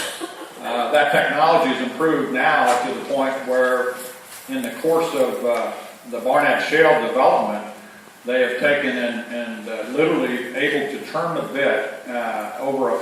That technology has improved now to the point where in the course of the Barnett Shale development, they have taken and literally able to turn the bit over a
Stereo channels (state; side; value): identical; both; correlation 1.00